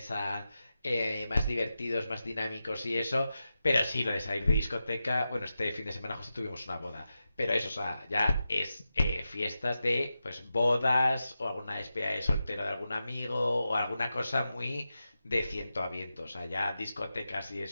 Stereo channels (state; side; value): inverted; both; correlation -0.91